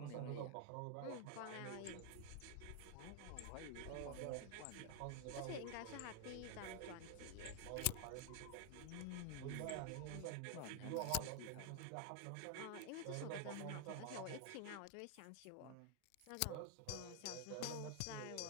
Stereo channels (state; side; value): different; both; correlation 0.00